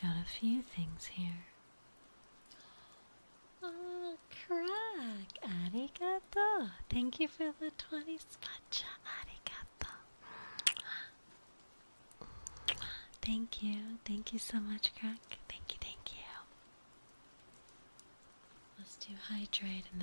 few things here. Oh, crack! Arigato! Thank you for the 20 spacha. Arigato. Thank you. Thank you so much, crack. Thank you, thank you. Let's do hydrate and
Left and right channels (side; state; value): both; inverted; correlation -1.00